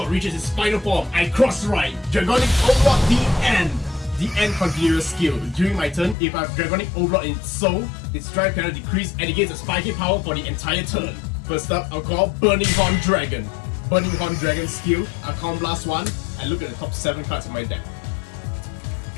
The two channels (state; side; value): drops out; right; at 6.2 s